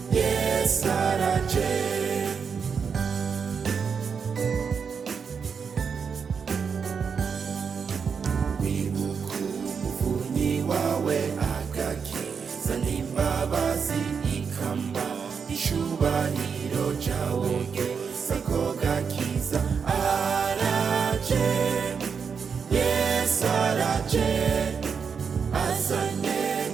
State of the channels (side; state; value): left; quieter; 6.2 dB